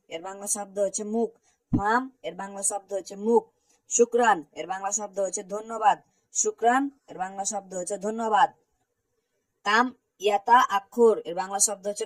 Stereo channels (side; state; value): both; identical; correlation 1.00